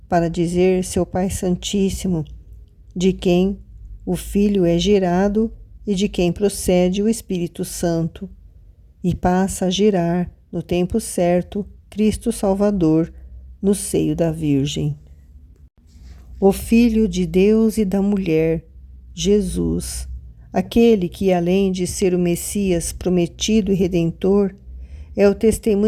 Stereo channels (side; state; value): both; identical; correlation 1.00